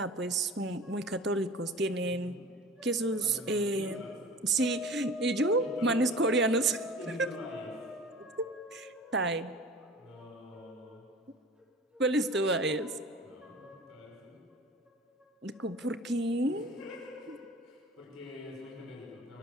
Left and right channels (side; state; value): both; normal; correlation 0.40